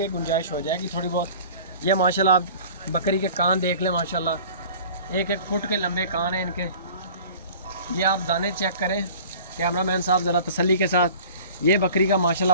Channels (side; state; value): both; inverted; correlation -0.44